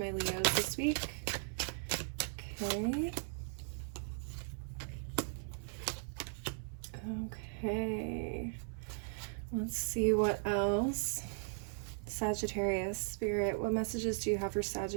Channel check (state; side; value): silent; left; 53 dB below the other